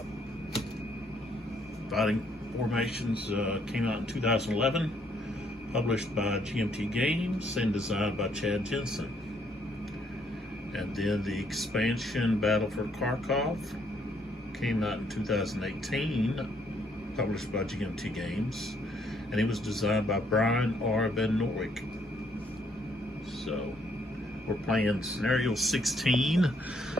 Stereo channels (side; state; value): both; normal; correlation 0.69